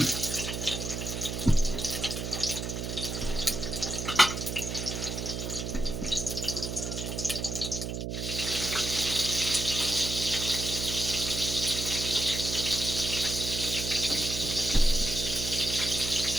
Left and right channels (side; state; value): right; noise; hum, 4 dB below the sound